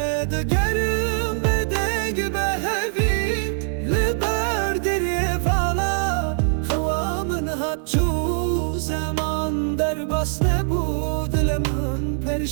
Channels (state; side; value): silent; left; 64 dB below the other